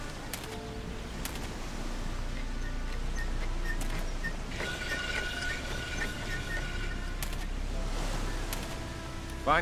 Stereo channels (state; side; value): identical; both; correlation 1.00